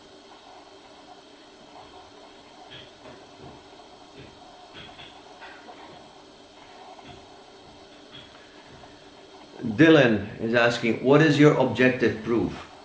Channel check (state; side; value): identical; both; correlation 1.00